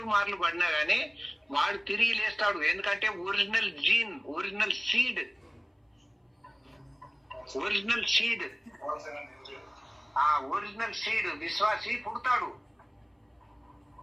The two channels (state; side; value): identical; both; correlation 1.00